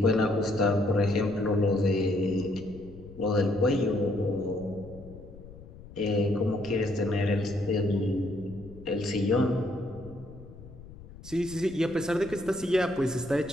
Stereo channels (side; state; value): left; noise; rumble, 18 dB below the sound